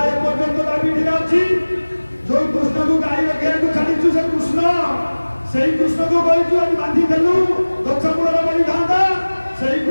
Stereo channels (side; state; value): both; inverted; correlation -1.00